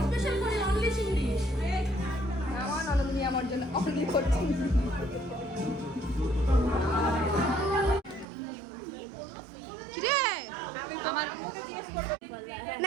স্পেশাল করে অনলি ইংলিশ। আমার ননদিনী আমার জন্য অনলি করছি। কিরে আমার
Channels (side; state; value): left; drops out; at 8.2 s